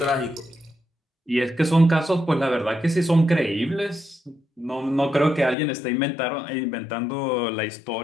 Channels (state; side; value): drops out; right; at 5.6 s